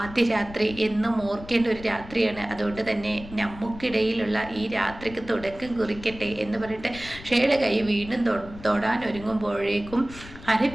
രാത്രി എന്നും ഓർക്കേണ്ട ഒരു രാത്രിയാണ്. അതുകൊണ്ട് തന്നെ നമുക്കിടയിലുള്ള ഈ രാത്രിക്ക് തുടക്കം കുറിക്കട്ടെ എന്ന് പറഞ്ഞിട്ട് ഷേയുടെ കൈ വീണ്ടും തൊടാൻ ഒരുങ്ങുമ്പോഴേക്കും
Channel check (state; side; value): noise; left; rumble, 16 dB below the sound